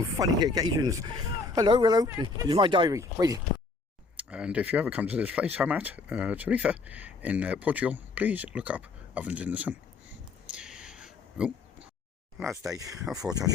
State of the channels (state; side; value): quieter; right; 4.0 dB